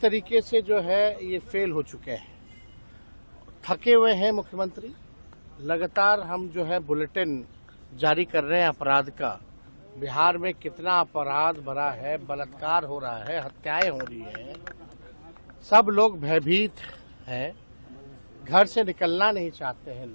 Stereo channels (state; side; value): inverted; both; correlation -1.00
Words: से जो है ये फेल हो चुके हैं। थके हुए हैं मुख्यमंत्री। लगातार हम जो है बुलेटिन जारी कर रहे हैं अपराध का। बिहार में कितना अपराध भरा है, बलात्कार हो रहा है, हत्याएं हो रही हैं, सब लोग भयभीत हैं, घर से निकलना नहीं चाहते हैं